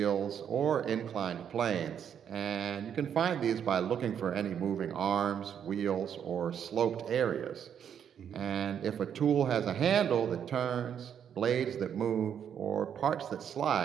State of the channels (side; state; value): left; quieter; 8.5 dB